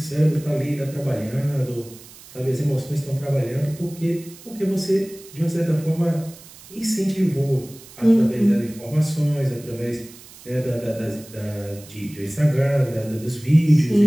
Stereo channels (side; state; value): right; noise; hiss, 20 dB below the sound